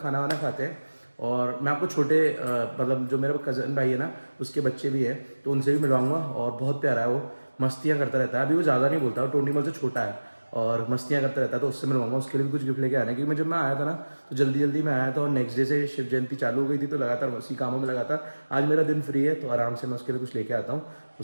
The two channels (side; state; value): both; inverted; correlation -1.00